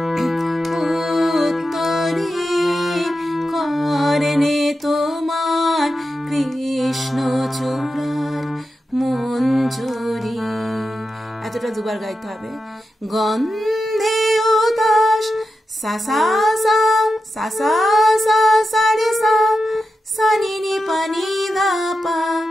উত্তরে করনে তোমার কৃষ্ণ চূড়ার মঞ্জরি। এতটা দুবার গাইতে হবে। গন্ধে উদাস সা সা সা সা সা সা সা রে সা সা নি নি পা নি ধা পা,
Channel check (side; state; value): both; normal; correlation 0.90